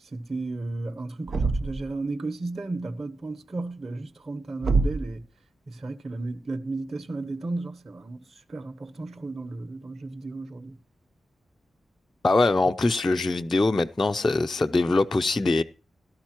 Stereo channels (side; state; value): both; normal; correlation 0.90